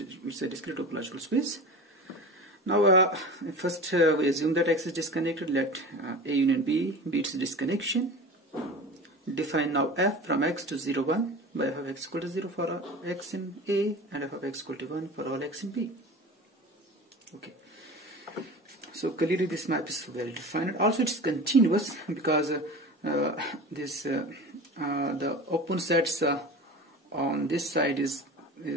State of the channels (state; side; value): normal; both; correlation 0.34